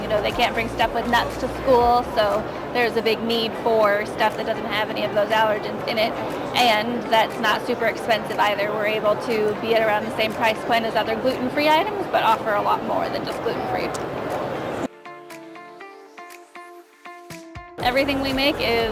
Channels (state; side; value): identical; both; correlation 1.00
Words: they can't bring stuff with nuts to school, so there's a big need for stuff that doesn't have any of those allergens in it, and that's not super expensive either. We're able to be at around the same price point as other gluten-free items, but offer a lot more than just gluten-free. Everything we make